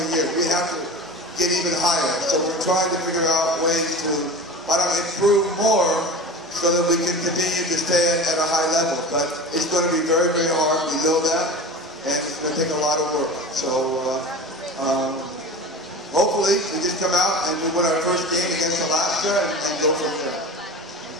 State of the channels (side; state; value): both; normal; correlation 0.33